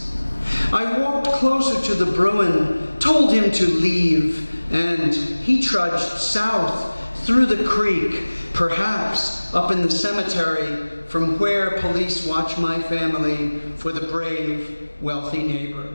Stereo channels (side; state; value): both; inverted; correlation -1.00